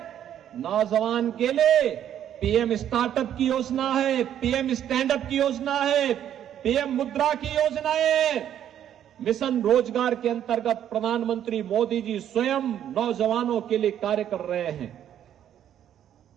नौजवान के लिए पीएम स्टार्टअप की योजना है, पीएम स्टैंड अप की योजना है, पीएम मुद्रा की योजना है। मिशन रोजगार के अंतर्गत प्रधानमंत्री मोदी जी स्वयं नौजवानों के लिए कार्य कर रहे हैं।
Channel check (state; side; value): quieter; left; 10.3 dB